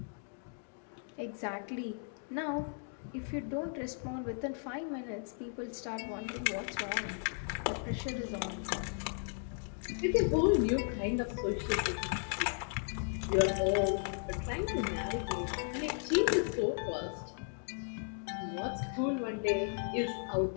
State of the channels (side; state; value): right; silent; 54 dB below the other